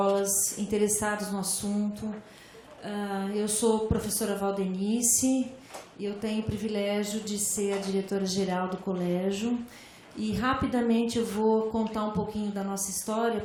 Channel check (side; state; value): both; identical; correlation 1.00